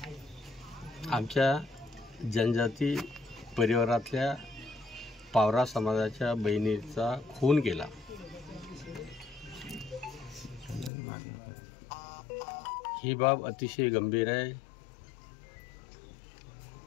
आमच्या जनजाती परिवारातल्या पावरा समाजाच्या बहिणीचा खून केला। ही बाब अतिशय गंभीर आहे।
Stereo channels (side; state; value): right; drops out; at 10.9 s